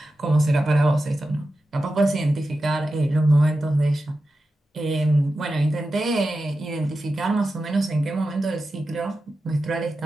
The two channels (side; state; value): both; normal; correlation 0.92